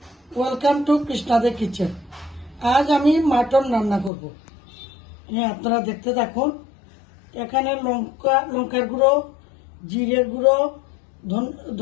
welcome to কৃষ্ণাদের kitchen. আজ আমি মাটন রান্না করব। আপনারা দেখতে থাকুন। এখানে লঙ্কার গুঁড়ো, জিরের গুঁড়ো,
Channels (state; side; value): drops out; right; at 4.1 s